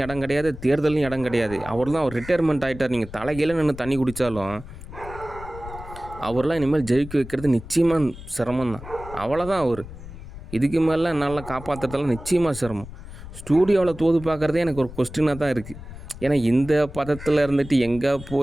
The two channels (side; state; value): left; noise; rumble, 14 dB below the sound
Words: இடம் கிடையாது, தேர்தலையும் இடம் கிடையாது. அவர் தான் அவர் ரிட்டையர்மெண்ட் ஆகிட்டார். நீங்கள் தலைகீழ நின்று தண்ணி குடித்தாலும் அவர்லாம் இனிமேல் ஜெயிக்க வைக்கிறது நிச்சயமாக சிரமம் தான். அவ்வளோதான் அவர். இதுக்கு மேலே நல்லா காப்பாற்றுறதெல்லாம் நிச்சயமாக சிரமம். ஸ்டூடியோவில் தோது பார்க்குறதே எனக்கு ஒரு கொஸ்டினாக தான் இருக்குது. ஏன்னா இந்த பதத்தில் இருந்துட்டு எங்கே